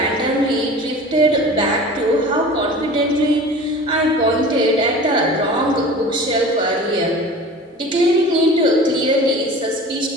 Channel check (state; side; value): normal; both; correlation 0.39